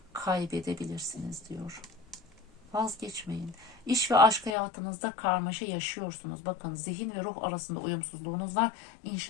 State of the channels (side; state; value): right; drops out; at 4.5 s